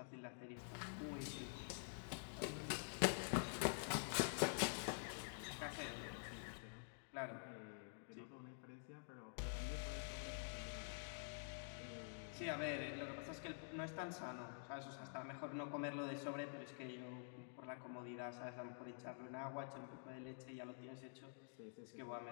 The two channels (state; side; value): silent; right; digital silence